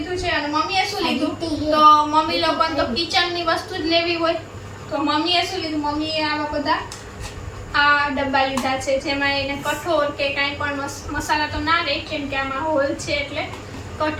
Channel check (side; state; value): both; identical; correlation 1.00